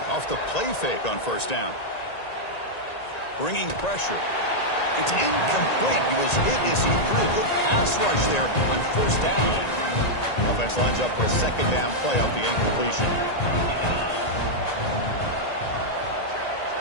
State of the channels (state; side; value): late; right; 1.9 ms